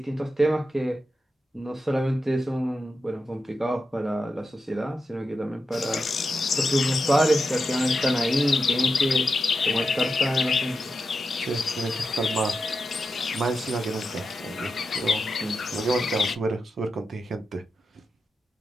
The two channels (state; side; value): normal; both; correlation 0.88